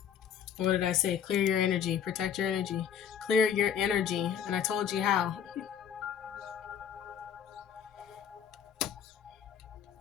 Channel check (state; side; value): quieter; right; 8.4 dB